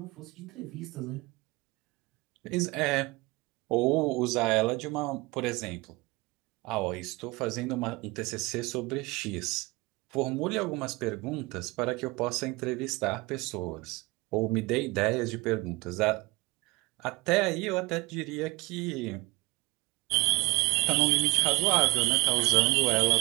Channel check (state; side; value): quieter; left; 24.5 dB